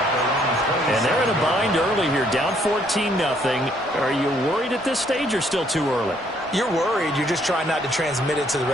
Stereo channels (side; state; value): both; normal; correlation 0.67